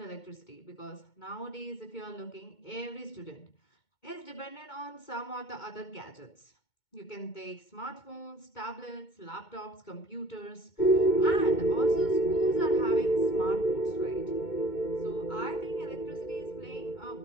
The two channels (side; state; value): right; late; 2.2 ms